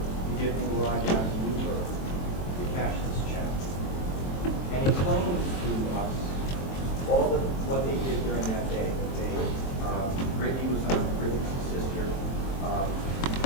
give him a ride down to Newport to cash this check. And he explains to us all of what they did during that day. That they, Brittany was on, Brittany's sister,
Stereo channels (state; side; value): late; right; 23 ms